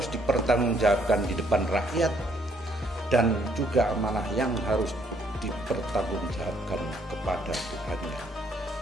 dipertanggungjawabkan di depan rakyat, dan juga amanah yang harus dipertanggungjawabkan kepada Tuhannya.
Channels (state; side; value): normal; both; correlation 0.67